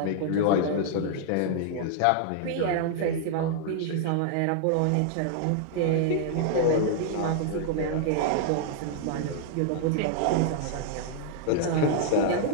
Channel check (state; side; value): different; both; correlation -0.01